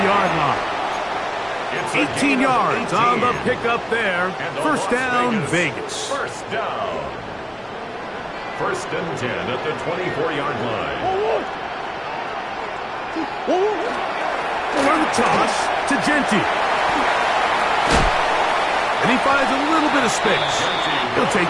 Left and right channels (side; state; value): both; identical; correlation 1.00